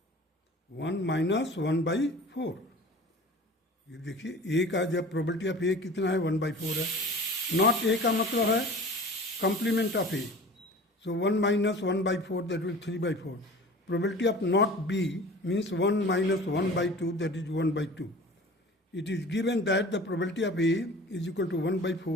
1 minus 1 by 4. ये देखिए A का जब probability of A कितना है 1 by 4 है. Not A का मतलब है complement of A. So 1 minus 1 by 4, that will 3 by 4. Probability of not B means 1 minus 1 by 2, that is 1 by 2. It is given that the probability of A is equal to 1 by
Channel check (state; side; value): normal; both; correlation 0.41